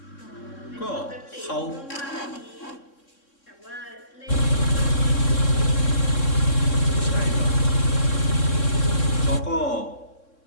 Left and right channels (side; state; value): right; late; 3.6 ms